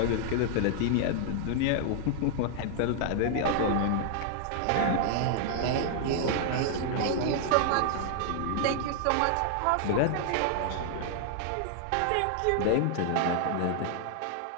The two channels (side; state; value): both; different; correlation -0.01